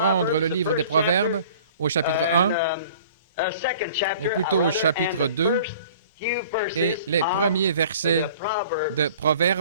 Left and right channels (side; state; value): both; inverted; correlation -0.48